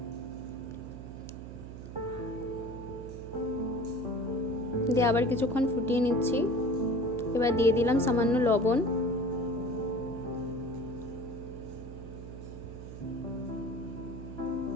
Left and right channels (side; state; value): right; noise; hum, 11 dB below the sound